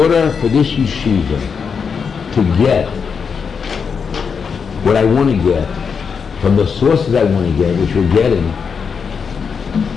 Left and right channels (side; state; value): right; quieter; 6.0 dB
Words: for this yeshiva to get what I want to get from the sources I want to get, which we're getting,